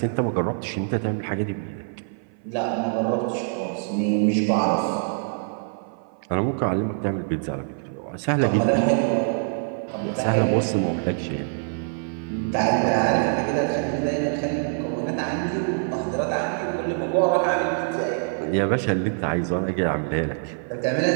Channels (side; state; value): left; silent; 56 dB below the other